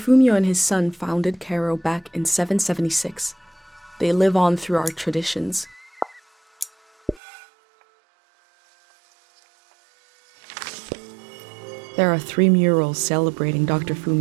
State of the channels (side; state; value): left; drops out; at 7.2 s